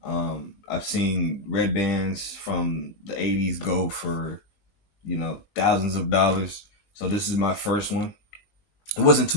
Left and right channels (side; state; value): right; late; 20 ms